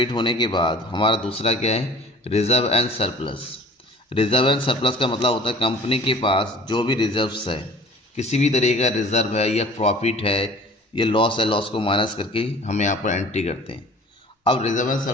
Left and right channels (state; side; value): normal; both; correlation 0.46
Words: होने के बाद हमारा दूसरा क्या है, reserve and surplus. Reserve and surplus का मतलब होता है कंपनी के पास जो भी रिजर्व्स है, किसी भी तरीके का रिजर्व है या प्रॉफिट है या लॉस है, लॉस को माइनस करके हम यहाँ पर एंट्री करते हैं। अब रिजर्व एंड